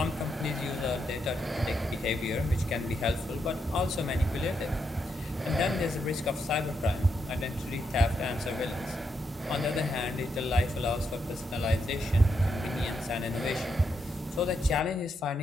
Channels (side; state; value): both; normal; correlation 0.81